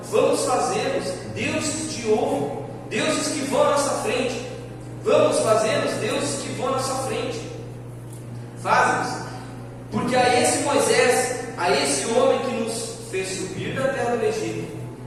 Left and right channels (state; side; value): identical; both; correlation 1.00